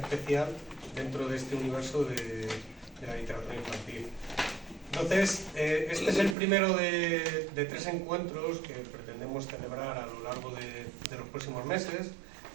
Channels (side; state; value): left; drops out; at 6.4 s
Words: dentro de este universo de la literatura infantil. Entonces, este es el primero de 3 encuentros que pretendemos celebrar a lo largo de los próximos meses.